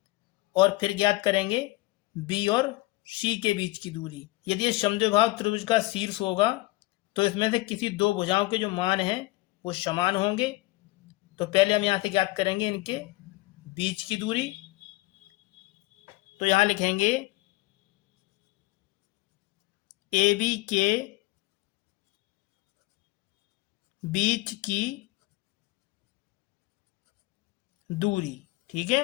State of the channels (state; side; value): quieter; right; 20.6 dB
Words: और फिर ज्ञात करेंगे बी और सी के बीच की दूरी। यदि ये समद्विबाहु त्रिभुज का शीर्ष होगा तो इसमें से किसी दो भुजाओं के जो मान हैं वो समान होंगे। तो पहले हम यहाँ से ज्ञात करेंगे इनके बीच की दूरी। तो यहाँ लिखेंगे ए बी के बीच की दूरी। ठीक